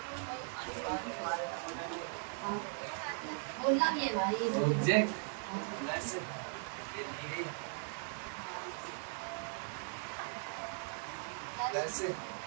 बोलना भी है भाई। ऑब्जेक्ट प्लस ये दी गई प्लस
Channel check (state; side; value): silent; left; 52 dB below the other